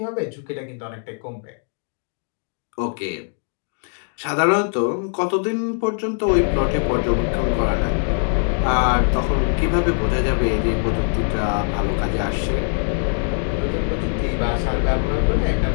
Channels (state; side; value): silent; right; 63 dB below the other